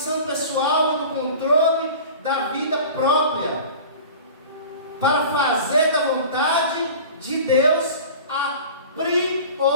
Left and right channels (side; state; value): both; inverted; correlation -0.40